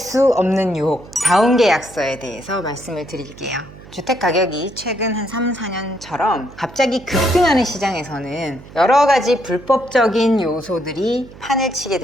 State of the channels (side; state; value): right; noise; hum, 19 dB below the sound